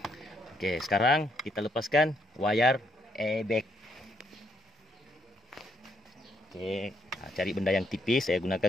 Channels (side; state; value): both; normal; correlation 0.74